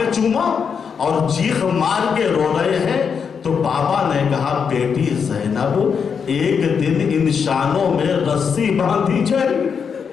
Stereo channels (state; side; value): quieter; right; 6.5 dB